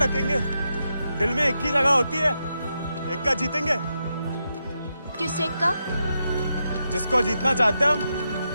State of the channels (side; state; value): both; inverted; correlation -0.85